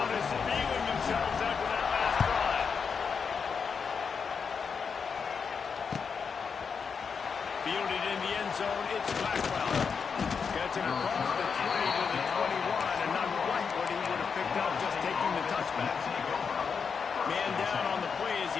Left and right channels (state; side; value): quieter; right; 5.9 dB